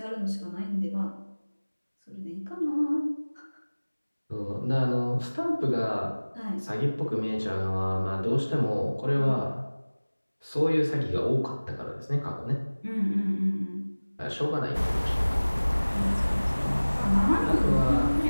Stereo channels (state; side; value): inverted; both; correlation -1.00